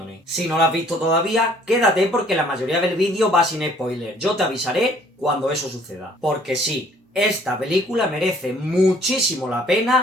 Si no la has visto todavía, quédate porque la mayoría del vídeo va sin spoiler. Yo te avisaré cuando eso suceda. Porque sí, esta película merece muchísimo la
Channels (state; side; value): normal; both; correlation 0.59